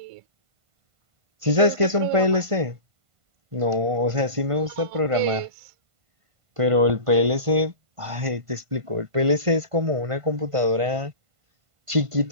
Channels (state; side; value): late; left; 1.5 ms